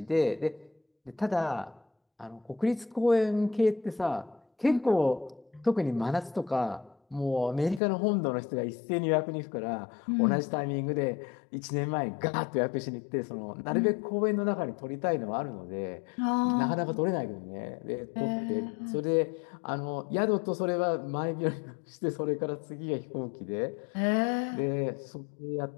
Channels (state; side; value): drops out; right; at 7.8 s